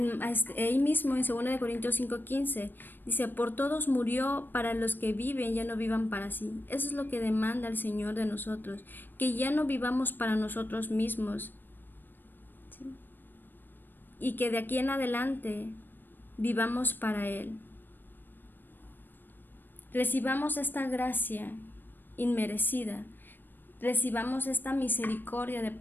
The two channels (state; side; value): late; right; 0.093 ms